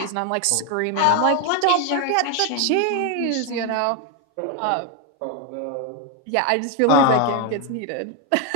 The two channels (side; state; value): both; different; correlation 0.01